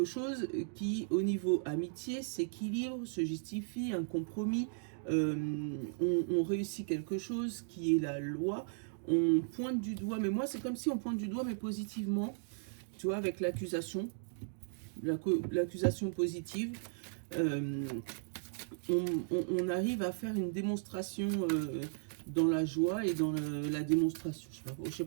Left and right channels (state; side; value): silent; left; digital silence